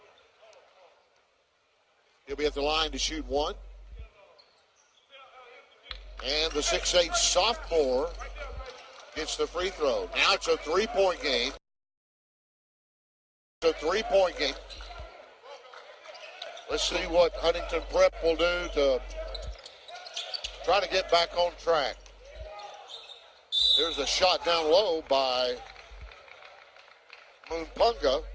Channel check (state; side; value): identical; both; correlation 1.00